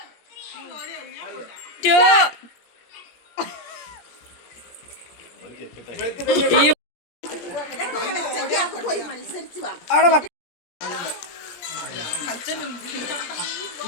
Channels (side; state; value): right; late; 17 ms